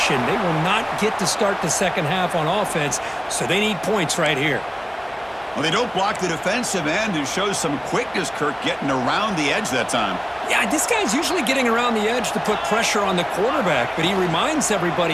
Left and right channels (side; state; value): both; identical; correlation 1.00